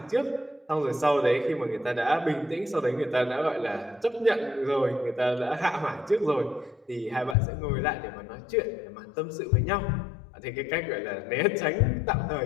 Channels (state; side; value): drops out; right; at 7.4 s